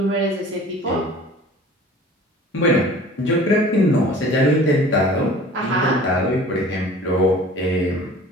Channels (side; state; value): both; normal; correlation 0.45